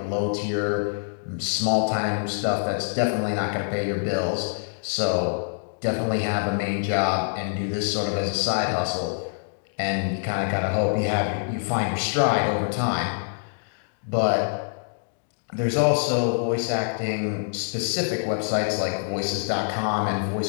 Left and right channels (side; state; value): right; silent; digital silence